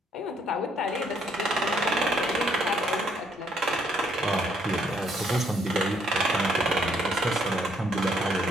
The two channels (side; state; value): both; normal; correlation 0.68